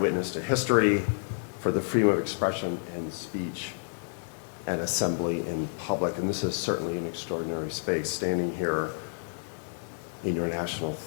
to history, for the freedom of expression and speech and assembly in public. And this is certainly an extraordinary space, standing here in your National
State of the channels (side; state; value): right; silent; digital silence